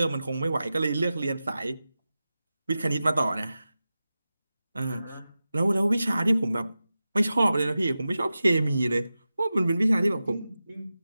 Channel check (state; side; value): inverted; both; correlation -0.94